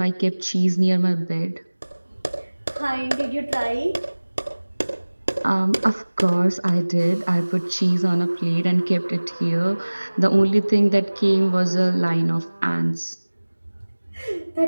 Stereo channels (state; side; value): inverted; both; correlation -1.00